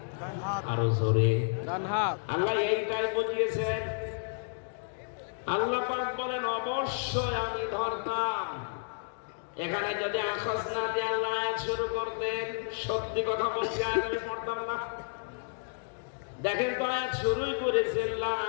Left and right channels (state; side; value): silent; right; digital silence